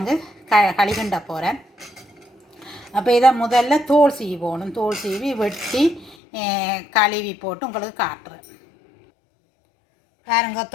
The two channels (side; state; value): right; drops out; at 6.2 s